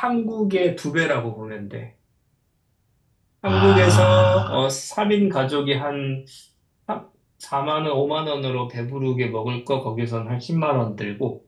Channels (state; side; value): identical; both; correlation 1.00